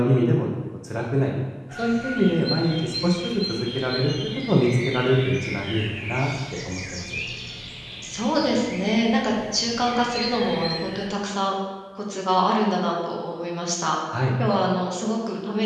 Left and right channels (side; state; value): both; identical; correlation 1.00